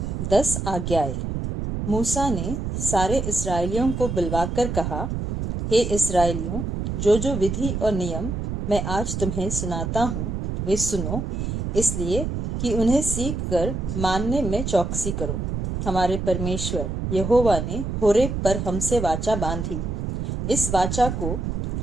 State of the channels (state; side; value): noise; right; rumble, 3 dB below the sound